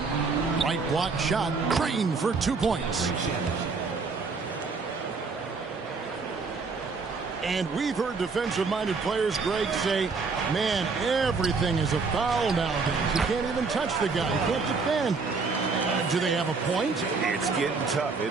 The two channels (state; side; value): quieter; left; 4.5 dB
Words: Right block shot, Green for 2 points. And we've heard defensive-minded players, Greg, say, man, everything is a foul nowadays. You can't even touch the guy. You can't defend. Do they have a point? It's getting tough,